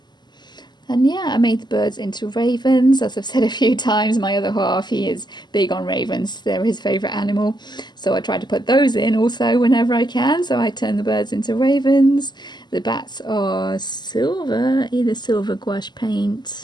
And yeah, I made the birds into ravens. As I've said a few times, my other half, he is big on ravens. They're his favourite animal. So I try to put those in also whenever I can. So I turn the birds into ravens. The bats are silver, either silver gouache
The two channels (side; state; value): right; late; 0.21 ms